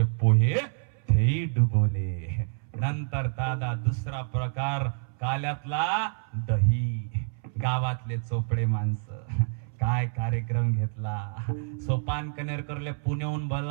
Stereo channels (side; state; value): left; silent; 59 dB below the other